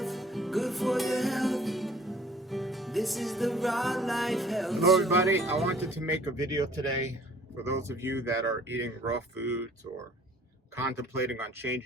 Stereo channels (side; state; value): both; normal; correlation 0.54